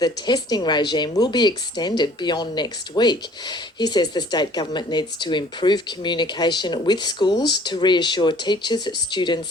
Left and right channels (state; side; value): normal; both; correlation 0.54